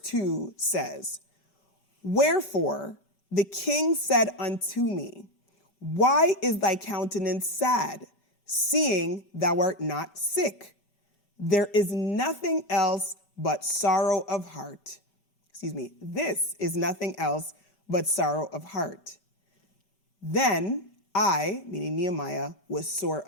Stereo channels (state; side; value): late; right; 5.0 ms